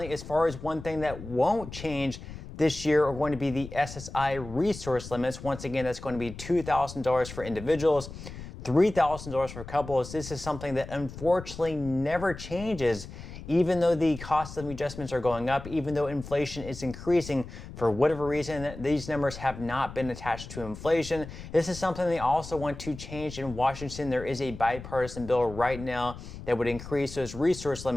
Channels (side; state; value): left; noise; rumble, 12 dB below the sound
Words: as far as one thing that won't change this year are going to be the SSI resource limits. Once again, that's going to be $2,000 for individuals, $3,000 for couples. This is something that unfortunately never changes, even though the cost of adjustments are going up, even though inflation is increasing. For whatever reason, these numbers have not been attached to inflation. This is something they also want to change in Washington. There is a bipartisan bill right now that would increase those resource